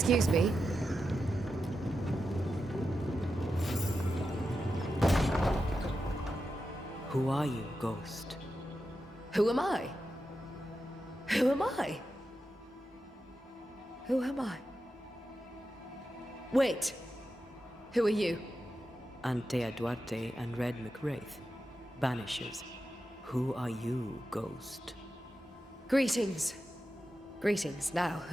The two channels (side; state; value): both; normal; correlation 0.89